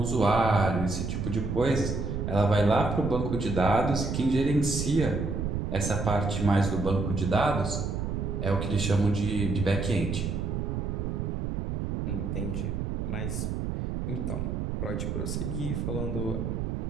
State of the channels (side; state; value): right; noise; rumble, 2 dB below the sound